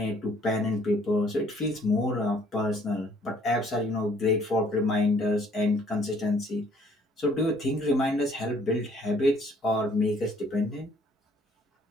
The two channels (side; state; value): both; normal; correlation 0.60